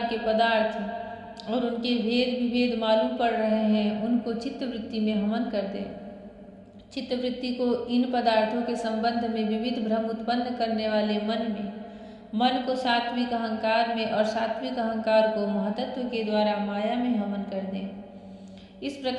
के पदार्थ और उनके भेद विभेद मालूम पड़ रहे हैं उनको चित्तवृत्ति में हवन कर दे। चित्तवृत्ति को इन पदार्थों के संबंध में विविध भ्रम उत्पन्न करने वाले मन को सात्विक अहंकार में और सात्विक अहंकार को महतत्व के द्वारा माया में हवन कर दें। इस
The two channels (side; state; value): both; identical; correlation 1.00